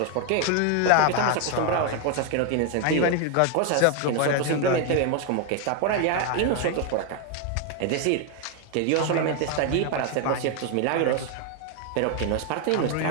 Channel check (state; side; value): different; both; correlation 0.01